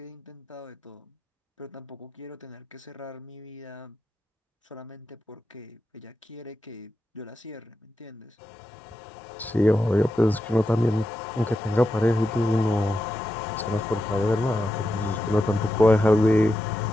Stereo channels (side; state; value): both; normal; correlation 0.87